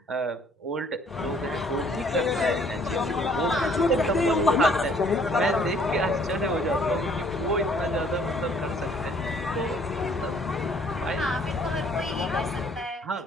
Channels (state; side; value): normal; both; correlation 0.60